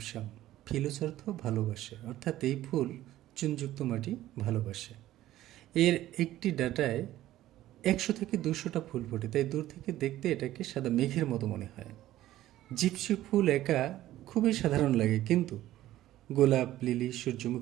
ফিলোস অর্থ ভালোবাসে, অর্থাৎ এই ফুল চুনযুক্ত মাটি ভালোবাসে। এর একটি ডাঁটায় 100 থেকে 200টা ফুল ফোটে, তাই দূর থেকে দেখতে এটাকে সাদা মেঘের মতো মনে হয়। জিপসি ফুল একা খুবই সাধারণ লাগে, কিন্তু গোলাপ, লিলি,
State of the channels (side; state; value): left; quieter; 14.4 dB